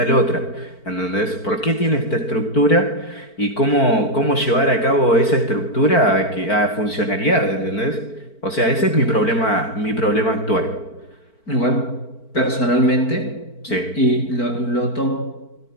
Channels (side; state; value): right; late; 4.5 ms